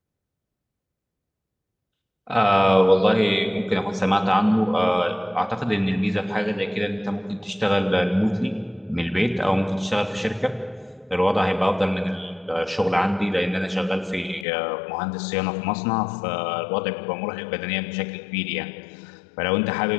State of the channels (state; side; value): drops out; right; at 14.5 s